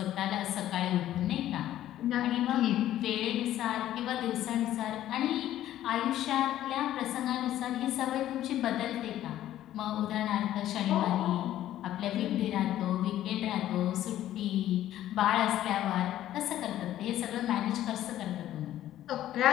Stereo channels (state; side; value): quieter; right; 12.9 dB